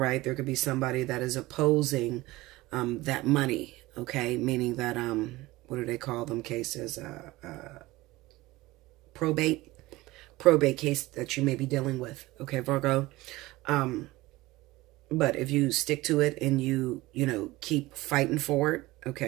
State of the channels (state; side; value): quieter; left; 19.3 dB